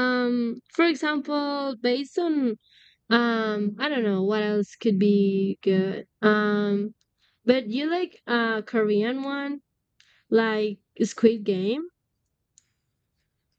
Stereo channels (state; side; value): identical; both; correlation 1.00